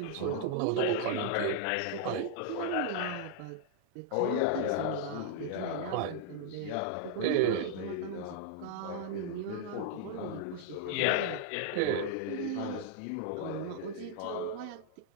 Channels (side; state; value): both; different; correlation -0.01